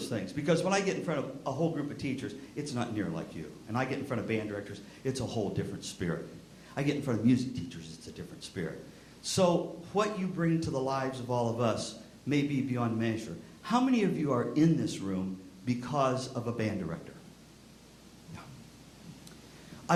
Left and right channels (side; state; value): both; identical; correlation 1.00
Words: things. Because when I get in front of a whole group of teachers, it's not near like you. And I get in front of band directors, it's a whole different spirit. I get in front of music teachers, it's a different spirit. So what you bring to the lives of all of us may be beyond measure. How many of you are in this room because of a band director? Yeah.